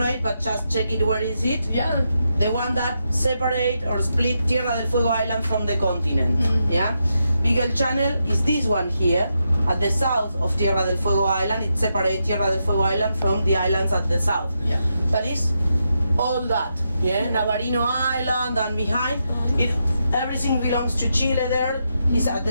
but just check it. Where is it? Yeah. The one that separate or split Tierra del Fuego Island from the continent. Yeah. Beagle Channel is this one here at the south of Tierra del Fuego Island. It separates Tierra del Fuego Island from the islands at the south. Yeah. That is all that. Yeah. Navarino Island and behind it, everything belongs to Chile. There is at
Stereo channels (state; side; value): inverted; both; correlation -0.84